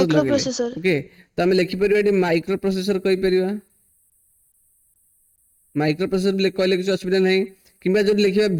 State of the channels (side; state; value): both; identical; correlation 1.00